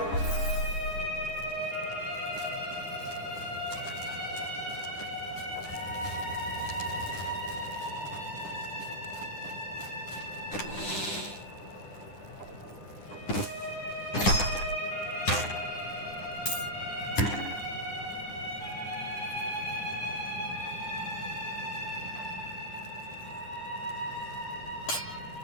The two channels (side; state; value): right; late; 9.9 ms